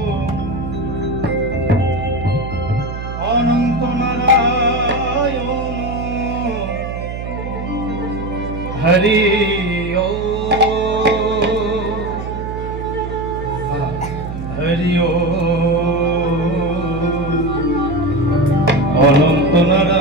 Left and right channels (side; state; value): right; noise; hum, 7 dB below the sound